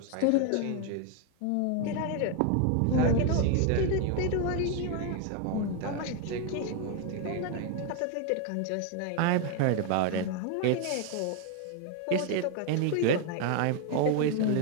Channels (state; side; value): different; both; correlation 0.01